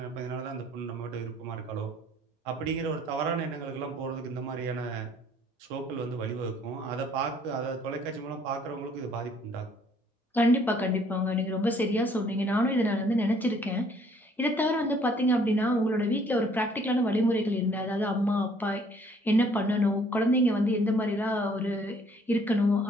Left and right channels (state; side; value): normal; both; correlation 0.61